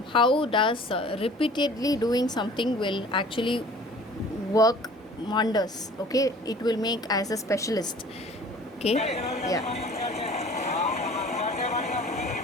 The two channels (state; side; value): normal; both; correlation 0.48